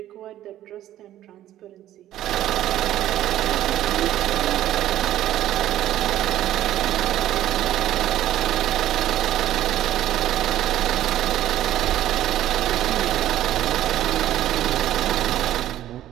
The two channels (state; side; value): quieter; left; 12.9 dB